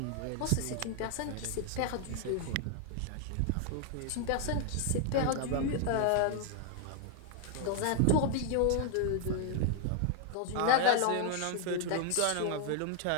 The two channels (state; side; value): different; both; correlation 0.00